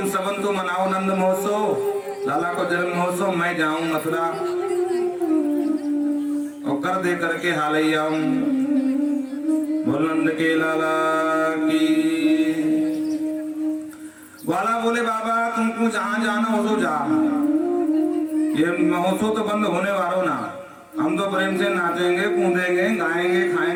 सबन तो मनाओ नंद महोत्सव, लाला को जन्म महोत्सव, मैं जाऊं मथुरा और कर दे करके हाल ही आऊं। बोल नंद के लाला की। ग्वाला बोले बाबा तुमको जहां जाना हो तो जा, ये महोत्सव तो बंद होने वाला ना, हम तो प्रेम से नाचेंगे कूदेंगे गाएंगे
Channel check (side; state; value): both; identical; correlation 1.00